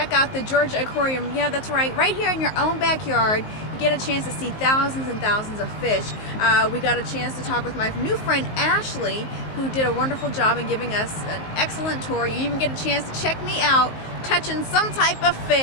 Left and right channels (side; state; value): right; late; 19 ms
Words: out the Georgia Aquarium. Yeah, that's right. Right here in your own backyard, you get a chance to see thousands and thousands of fish. We got a chance to talk with my new friend Ashley, who did a wonderful job in giving us an excellent tour. You even get a chance to check me out touching some type of